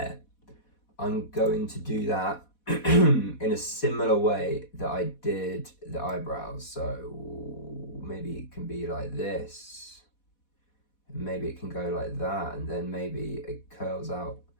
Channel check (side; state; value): right; late; 4.1 ms